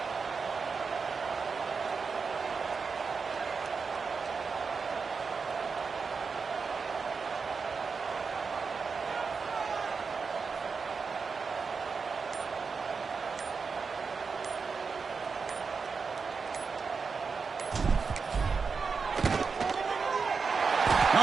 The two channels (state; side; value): quieter; left; 5.1 dB